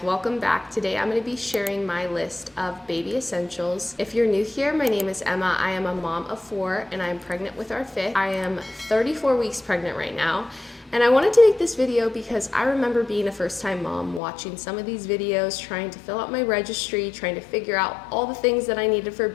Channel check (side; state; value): right; drops out; at 14.2 s